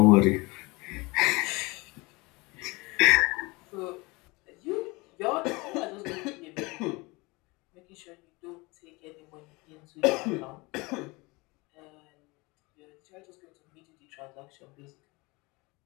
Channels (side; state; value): right; quieter; 24.9 dB